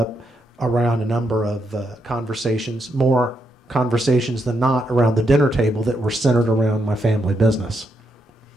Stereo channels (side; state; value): both; normal; correlation 0.80